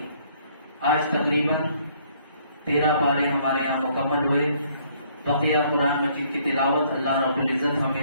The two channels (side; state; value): both; inverted; correlation -0.64